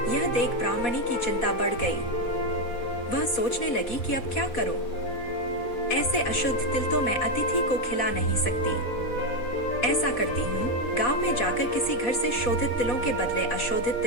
यह देख ब्राह्मणी की चिंता बढ़ गई। वह सोचने लगी कि अब क्या करूं? ऐसे अशुद्ध तिल तो मैं अतिथि को खिला नहीं सकती। ऐसा करती हूँ, गांव में जाकर किसी घर से शोधित तिलों के बदले अशोधित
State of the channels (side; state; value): right; late; 4.1 ms